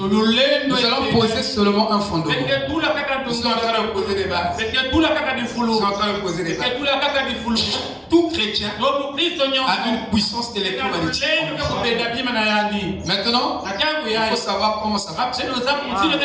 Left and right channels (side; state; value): both; identical; correlation 1.00